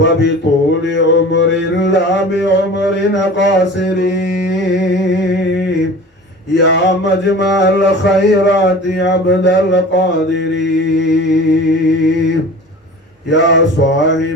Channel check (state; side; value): normal; both; correlation 0.40